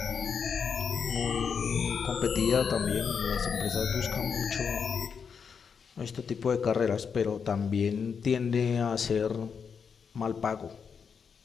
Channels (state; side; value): quieter; right; 6.4 dB